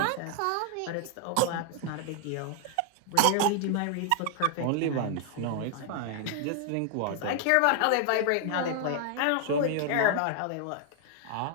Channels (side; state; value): both; different; correlation 0.00